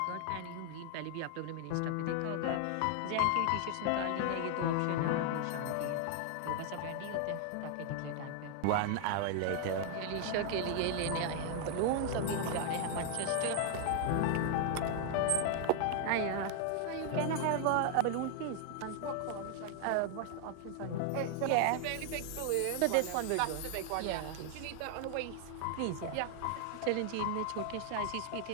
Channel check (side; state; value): both; different; correlation 0.00